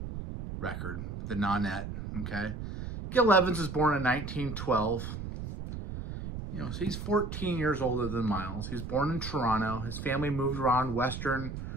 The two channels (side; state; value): right; noise; rumble, 7 dB below the sound